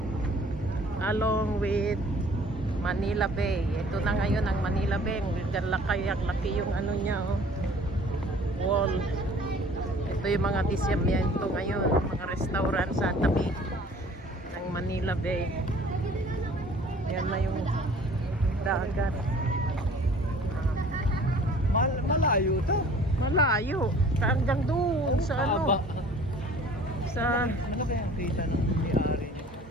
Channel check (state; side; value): normal; both; correlation 0.50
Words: along with Manila Bay. Ito na ngayon ang Manila Bay. Laki yung ano niya, oh, wall. Ito yung mga disyamiento ngayon, mga restaurant sa tabi ng Manila Bay. Yan na yung dagat. Malayo to. Malayo. Hanggang doon sa ano. Sa Ano kaya ang kita ng may-ari?